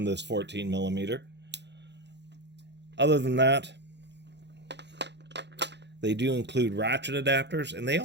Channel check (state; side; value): late; left; 0.50 ms